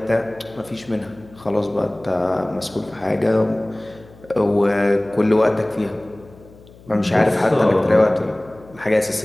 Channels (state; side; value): noise; left; hum, 23 dB below the sound